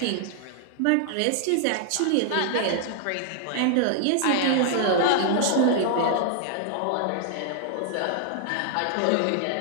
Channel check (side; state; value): both; different; correlation 0.00